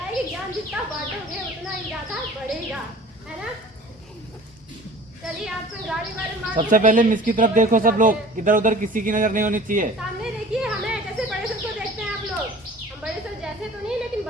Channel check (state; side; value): normal; both; correlation 0.45